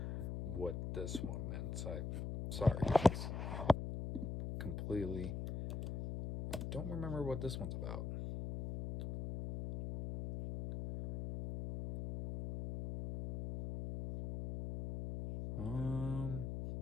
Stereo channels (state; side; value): noise; left; hum, 4 dB below the sound